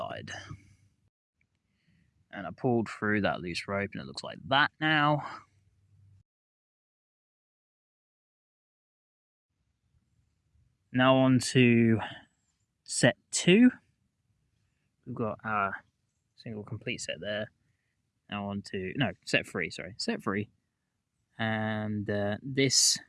And I pulled through that loose rope and it looks like that now. Now on to set 2. We've got our single complete set there. Now on to, set 3, sorry. Set 3. And this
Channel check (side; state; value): both; identical; correlation 1.00